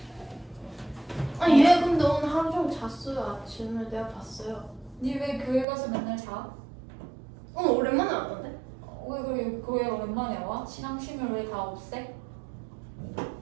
아니 얘 근데 오늘 하루 종일 잤어요. 아침에 내가 봤어요. 니 왜 교회 가서 맨날 자? 오늘 오랜만에 왔던데? 왜 그래 교회 오랜만에 와? 신앙심을 왜 다 없애?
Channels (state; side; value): drops out; left; at 5.7 s